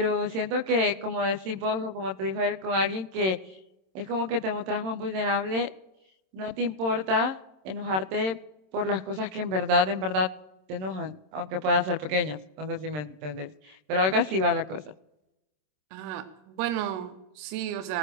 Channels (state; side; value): late; left; 27 ms